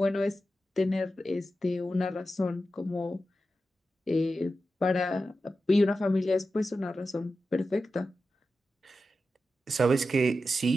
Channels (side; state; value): both; normal; correlation 0.91